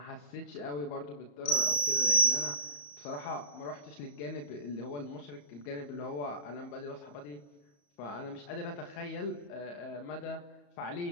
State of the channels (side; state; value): right; late; 34 ms